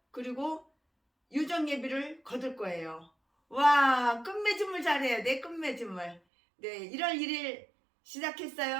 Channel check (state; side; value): drops out; left; at 6.2 s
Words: 그리고 유정 예비를 거둘 거예요. 와, 끝맺음을 잘해야 돼. 끝맺음을. 네, 1월 1일